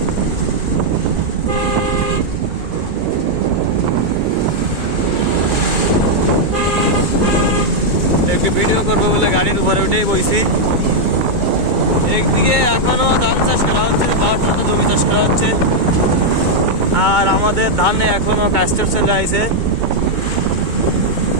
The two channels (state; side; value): late; left; 2.2 ms